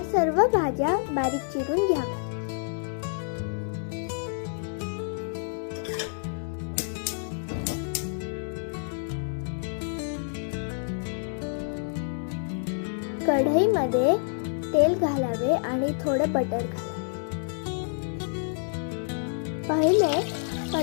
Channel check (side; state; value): right; silent; digital silence